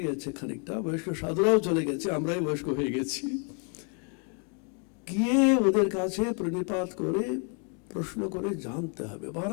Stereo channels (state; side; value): quieter; right; 39.1 dB